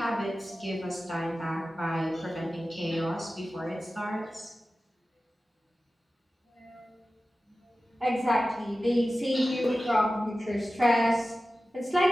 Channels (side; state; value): both; normal; correlation 0.95